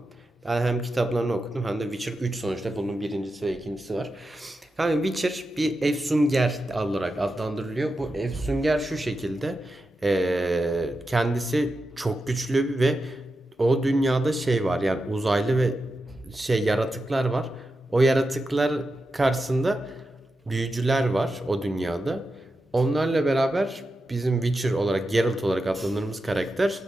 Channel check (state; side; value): normal; both; correlation 0.89